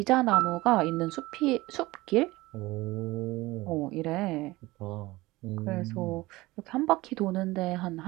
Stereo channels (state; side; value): quieter; left; 19.9 dB